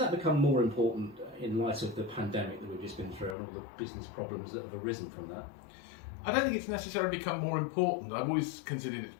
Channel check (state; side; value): drops out; right; at 3.4 s